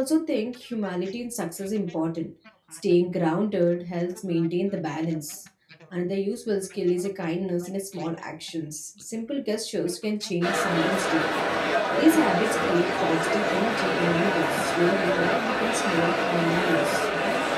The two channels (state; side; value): identical; both; correlation 1.00